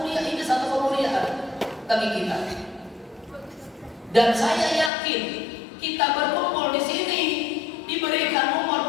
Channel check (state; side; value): drops out; right; at 4.9 s